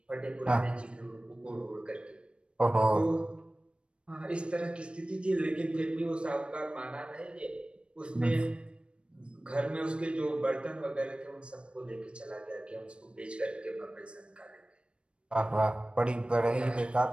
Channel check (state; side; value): late; left; 0.057 ms